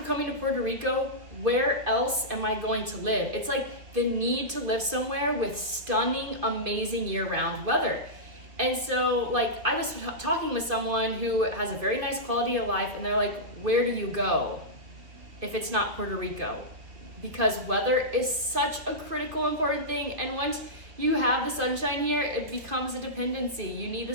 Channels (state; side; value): late; left; 2.8 ms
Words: to Puerto Rico, where else am I going to live? It's like the need to live somewhere with stunning, amazing year-round weather. And so, like, I was talking with someone who has a very nice quality of life, and they're like, where do you go if it's not Puerto Rico? Because weather is such a critical, important thing. And once you have the sunshine here, it becomes a dependency. You need the